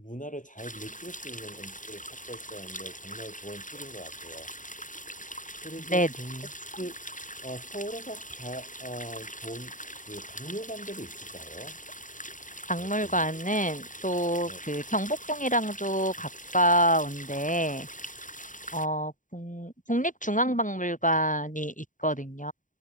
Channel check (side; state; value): right; late; 0.38 ms